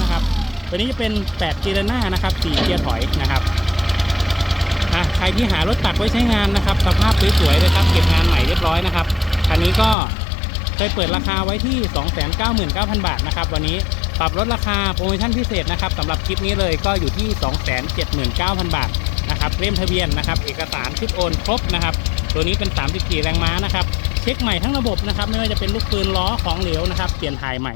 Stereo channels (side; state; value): right; drops out; at 10.0 s